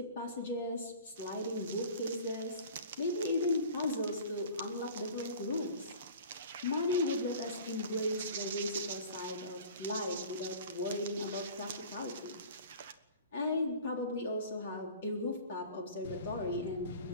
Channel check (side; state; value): both; inverted; correlation -0.42